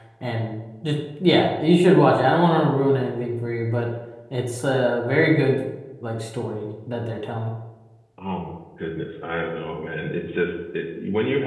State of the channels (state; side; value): identical; both; correlation 1.00